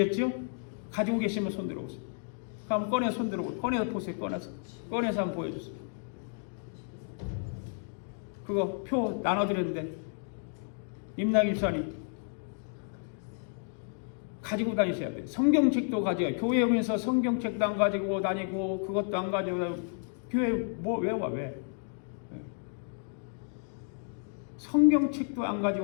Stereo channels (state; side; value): silent; right; 57 dB below the other